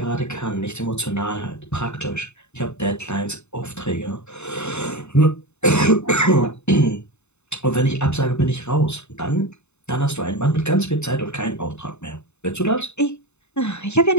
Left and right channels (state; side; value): late; right; 0.82 ms